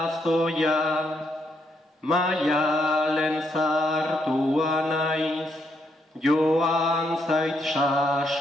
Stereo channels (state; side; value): normal; both; correlation 0.76